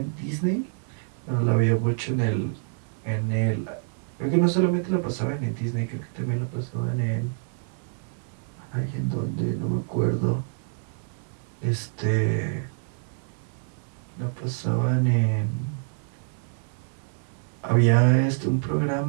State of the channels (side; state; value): left; silent; digital silence